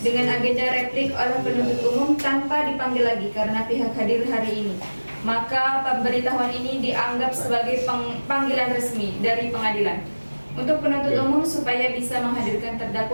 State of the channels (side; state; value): both; inverted; correlation -1.00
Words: dengan agenda replik oleh penuntut umum tanpa dipanggil lagi karena pihak hadir hari ini. Maka pemberitahuan ini dianggap sebagai panggilan resmi dari pengadilan untuk penuntut umum supaya bisa menghadirkan